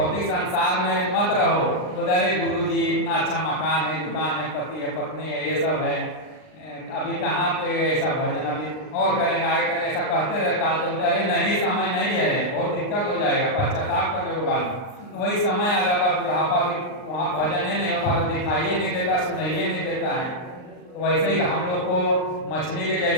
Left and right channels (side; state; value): right; late; 39 ms